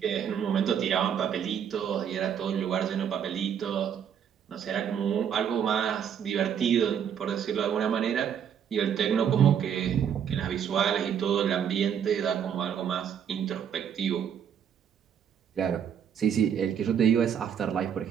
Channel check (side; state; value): left; quieter; 8.3 dB